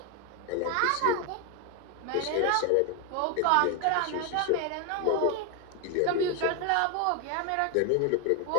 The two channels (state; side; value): different; both; correlation 0.01